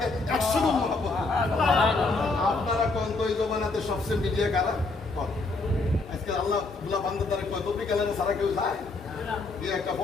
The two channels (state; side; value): quieter; right; 3.5 dB